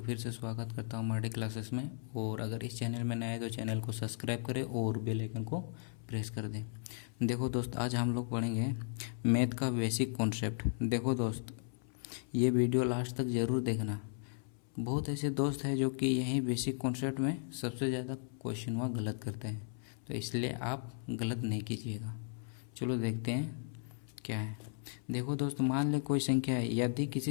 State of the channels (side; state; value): right; silent; 54 dB below the other